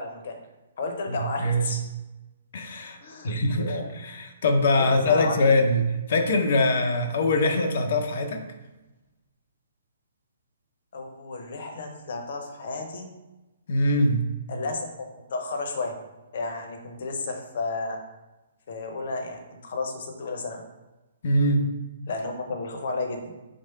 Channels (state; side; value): inverted; both; correlation -0.66